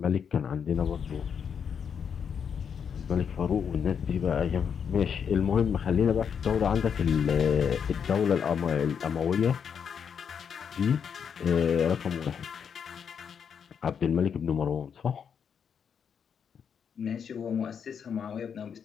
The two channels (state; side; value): quieter; right; 7.2 dB